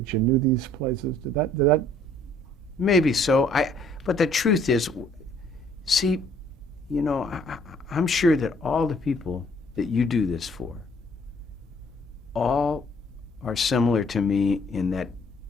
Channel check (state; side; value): normal; both; correlation 0.60